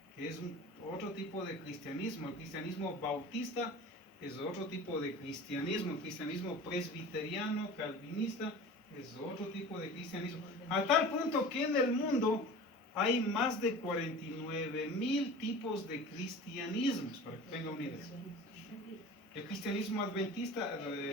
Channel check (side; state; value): both; normal; correlation 0.38